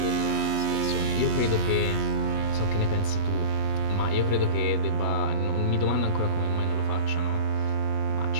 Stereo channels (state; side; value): late; left; 8.2 ms